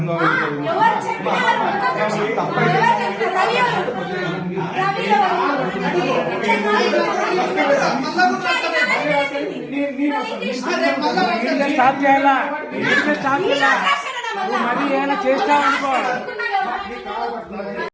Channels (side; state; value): both; identical; correlation 1.00